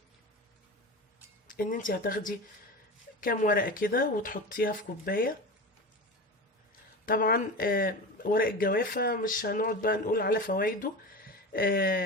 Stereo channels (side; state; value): both; normal; correlation 0.28